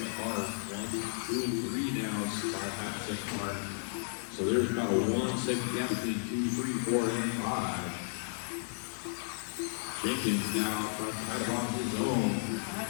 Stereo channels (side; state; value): right; silent; digital silence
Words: part. 1, 2, and 3 now, 5 half second part. So there's about a 1 second gap between 2, 3, 4, and 5. Jenkins now right on his own.